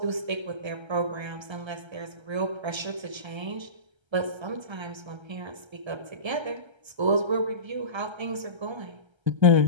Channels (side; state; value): left; late; 1.3 ms